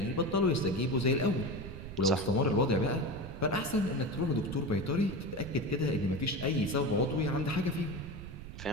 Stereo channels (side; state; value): right; noise; rumble, 11 dB below the sound